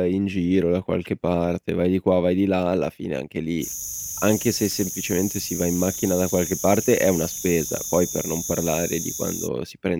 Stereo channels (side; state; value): both; identical; correlation 1.00